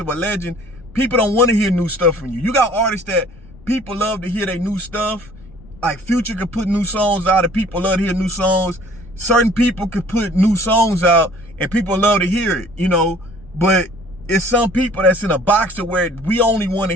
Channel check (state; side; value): noise; left; rumble, 23 dB below the sound